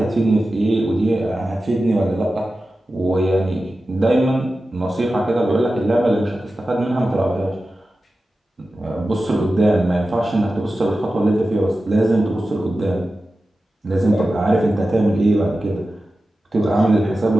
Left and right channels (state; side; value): normal; both; correlation 0.94